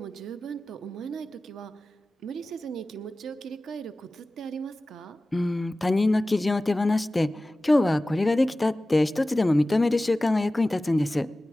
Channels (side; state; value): both; normal; correlation 0.96